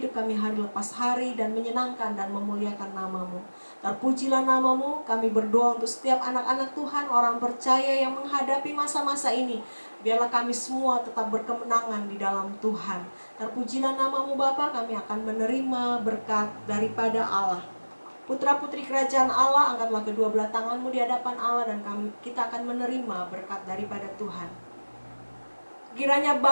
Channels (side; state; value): both; inverted; correlation -1.00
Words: kami hari lepas hari, dan menyenangkan dan memuliakan nama-Mu. Terpujilah nama-Mu. Kami berdoa untuk setiap anak-anak Tuhan, orang percaya yang menghadapi masa-masa ini. Biarlah kami semua tetap berkemenangan di dalam Tuhan. Terpujilah nama-Mu Bapa, kami akan menerima berkat daripada Allah. Putra-putri kerajaan Allah, angkatlah kedua belah tanganmu di hadapan Allah, dan kita akan menerima berkat daripada Tuhan. Kiranya